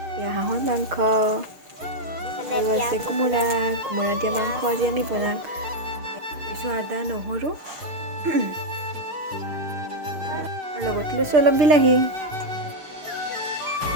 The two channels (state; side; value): late; left; 6.5 ms